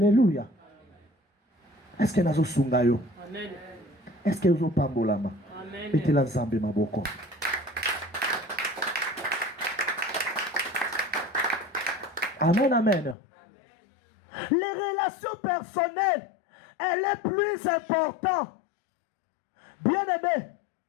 Est-ce que nous sommes sungayo? Amen. Est-ce que nous sommes pambolama? Amen. Et la Zambé maboko. Amen, amen. Les relations personnelles, elle est plus importante. Bien aimé,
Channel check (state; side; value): drops out; right; at 13.2 s